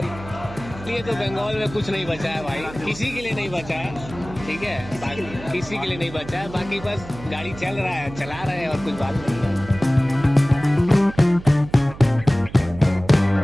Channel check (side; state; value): right; noise; hum, 15 dB below the sound